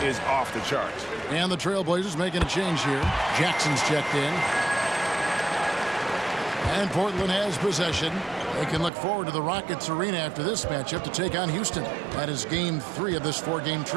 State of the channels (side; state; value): left; drops out; at 8.9 s